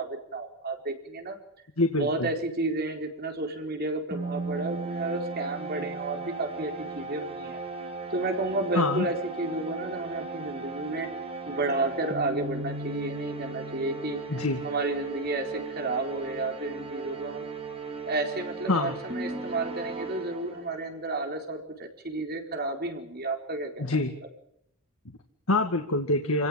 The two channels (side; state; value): both; normal; correlation 0.08